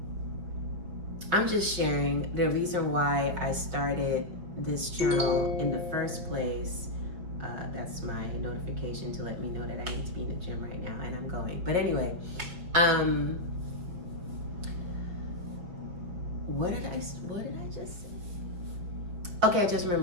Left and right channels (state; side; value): late; left; 5.5 ms